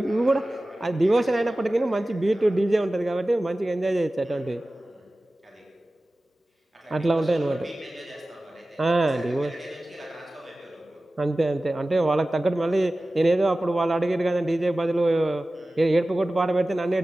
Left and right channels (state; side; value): normal; both; correlation 0.96